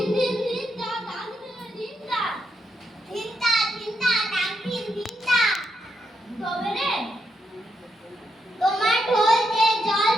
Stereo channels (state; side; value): normal; both; correlation 0.81